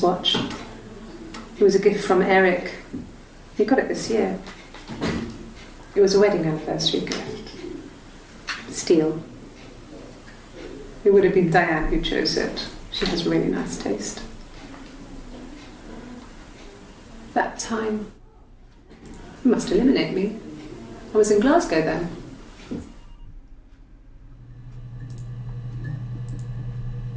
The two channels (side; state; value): both; identical; correlation 1.00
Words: watch. It was a gift from Eric. He got it this year. It was a wedding anniversary gift. Steel. It would have been Diane who chose it. She has really nice taste. That time, it must eliminate me. I was in Glasgow then.